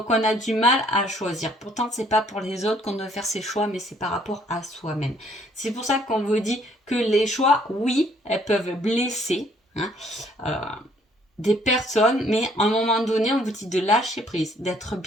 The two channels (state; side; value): normal; both; correlation 0.63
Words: on a du mal à choisir. Pourtant, c'est pas pour les autres qu'on doit faire ses choix, mais c'est par rapport à soi-même. C'est pour ça qu'on vous dit que les choix, oui, elles peuvent blesser, hein, euh, des personnes, mais à un moment donné, on vous dit de lâcher prise, d'être